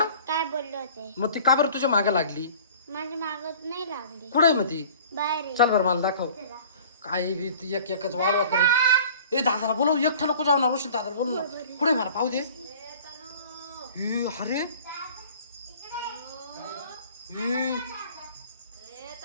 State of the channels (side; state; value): both; inverted; correlation -0.46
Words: काय बोलले होते? मग ती का बरं तुझ्या मागे लागली माझ्या मागत नाही लागली. कुठे मग ती बाहेर आहे. चल बरं मला दाखव काही बी ती एक एकच वाळवा करीत ए दादाला बोलव एकटा नको जाऊ ना रोशन दादाला बोलू ना कुठे मला पाहू दे ए, अरे